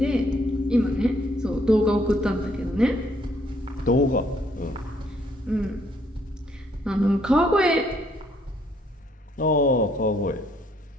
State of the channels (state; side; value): normal; both; correlation 0.68